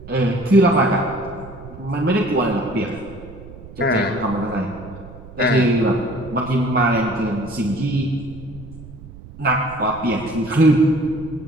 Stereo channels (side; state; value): right; noise; rumble, 17 dB below the sound